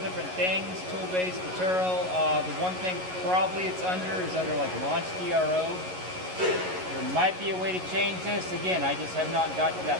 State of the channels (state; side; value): late; left; 11 ms